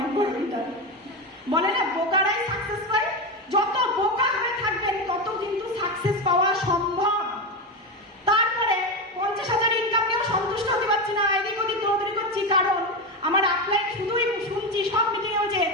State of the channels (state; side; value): normal; both; correlation 0.15